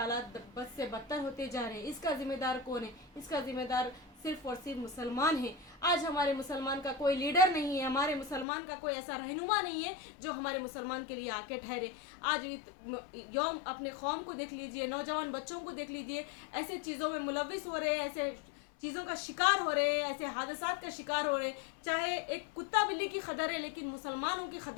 बद से बदतर होते जा रहे हैं। इसका ज़िम्मेदार कौन है? इसका ज़िम्मेदार सिर्फ़ और सिर्फ मुसलमान है। आज हमारे मुसलमान का कोई लीडर नहीं है, हमारे मुसलमान का कोई ऐसा रहनुमा नहीं है जो हमारे मुसलमान के लिए आके ठहरे। आज यौम अपने कौम को देख लीजिए, नौजवान बच्चों को देख लीजिए, ऐसे चीज़ों में मुलविस हो रहे हैं, ऐसे चीज़ों का शिकार हो रहे हैं, ऐसे हादसात का शिकार हो रहे हैं। चाहे एक कुत्ता बिल्ली की खदर है, लेकिन मुसलमानों की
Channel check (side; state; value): right; drops out; at 8.5 s